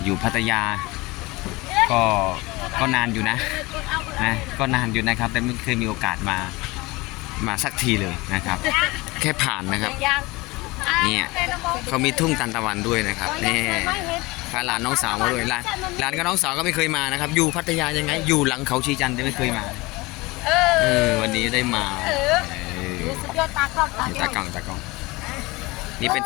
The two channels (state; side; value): quieter; right; 22.7 dB